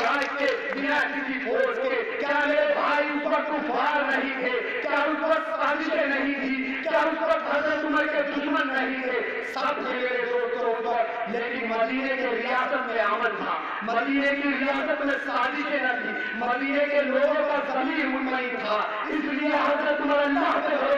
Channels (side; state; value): both; identical; correlation 1.00